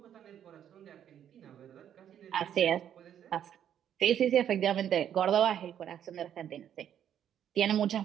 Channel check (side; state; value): left; quieter; 9.8 dB